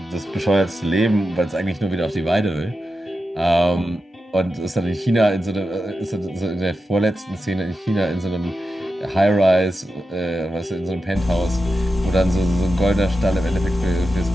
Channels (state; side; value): normal; both; correlation 0.90